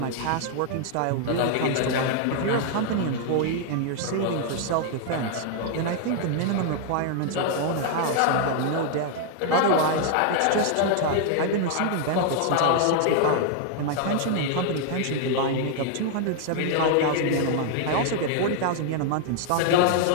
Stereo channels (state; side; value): different; both; correlation 0.00